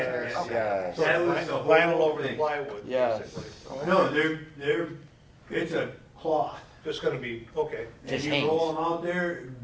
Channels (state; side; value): identical; both; correlation 1.00